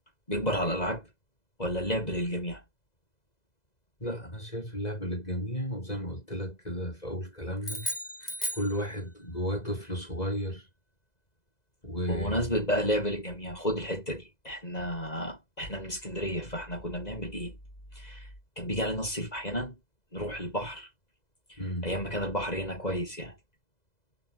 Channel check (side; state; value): right; late; 2.0 ms